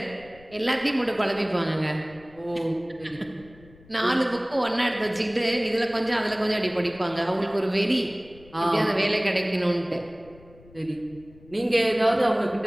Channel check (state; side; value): noise; left; rumble, 24 dB below the sound